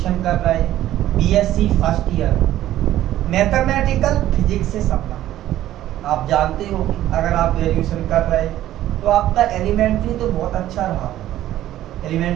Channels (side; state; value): left; quieter; 13.4 dB